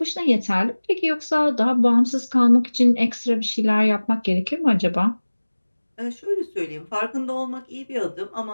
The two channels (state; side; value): inverted; both; correlation -1.00